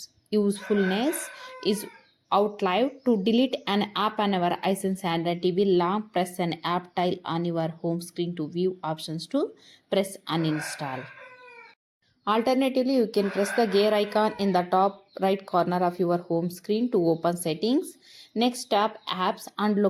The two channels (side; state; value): both; identical; correlation 1.00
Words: usefulness is outlived. To delete an app on our Hisense Android TV, long press an app tile on your home screen to view options to press uninstall. Alternatively, you can press the gear icon in the top right corner of your home screen to open settings. Next, tap apps and